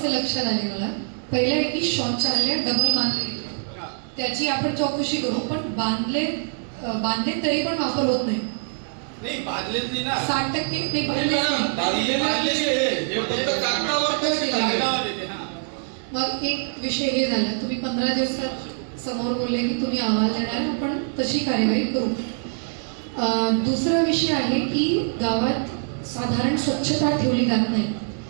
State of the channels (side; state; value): left; silent; digital silence